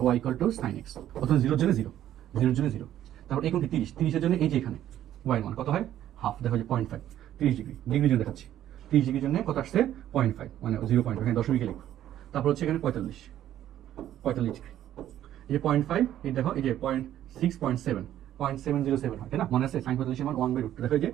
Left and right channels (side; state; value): left; quieter; 11.9 dB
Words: y = sin x। প্রথমে 0 এর জন্য 0, 0 এর জন্য 0, তারপর এই কোণটি 30, 30 এর জন্য এই যে এখানে y এর মান কত হয় হাফ, দেখো যে 0.5, 30 ডিগ্রি, ডিগ্রির জন্য দেখাচ্ছি। 30 ডিগ্রির জন্য কত আসছে 0.5, মানে 0.5, এখানে দশমিকে লিখো। তারপর হচ্ছে এখানে 45, 45 ডিগ্রি, এই যে 0.5, এই দেখো এই যে 0.6, 0.7, 0.707 হয়, তাই না? মনে আছে সাইন 45 এর মান 1/√2, দেখো এই যে